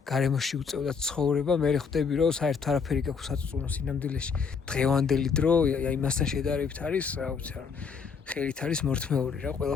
გარემოში უწევდა ცხოვრება, მე ხვდები რომ საერთოდ არაფერი გაქვს საწუწუნო სინამდვილეში. დღევანდელი დრო იმასთან შედარებით არის, რა ვიცი რა, ხელით არის მორთმეული რა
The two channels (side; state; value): right; quieter; 5.8 dB